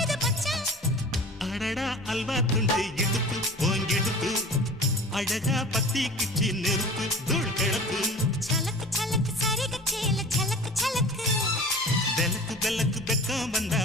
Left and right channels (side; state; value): both; normal; correlation 0.40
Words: மச்சான் அடடா அல்வா துண்டு இடுப்பு போங்கிடுப்பு அழகா பத்தி கிச்சி நெருப்பு தூள் கிளப்பு சலக்கு சலக்கு சரிக சேல சலக்கு சலக்கு பெலக்கு பெலக்கு பெக்கம் வந்தா